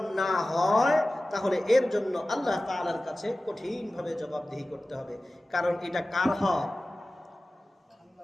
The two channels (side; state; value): both; normal; correlation 0.96